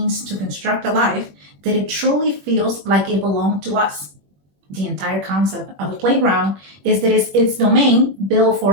to construct a life that it truly feels like it belongs to us. The entire concept of a playground is that it's its domain built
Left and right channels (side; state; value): left; late; 21 ms